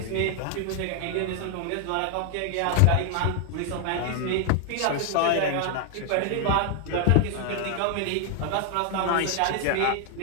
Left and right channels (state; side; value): different; both; correlation 0.00